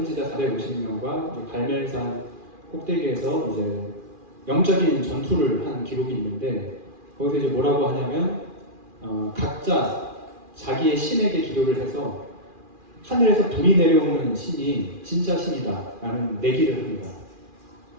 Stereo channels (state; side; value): late; left; 2.4 ms